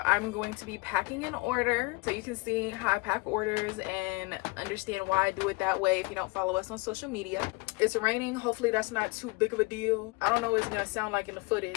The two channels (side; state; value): right; quieter; 26.4 dB